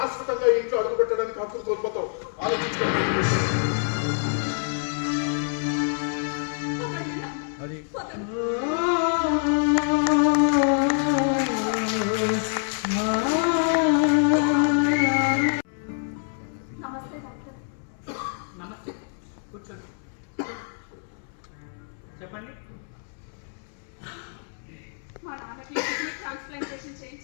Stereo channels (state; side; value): silent; right; 61 dB below the other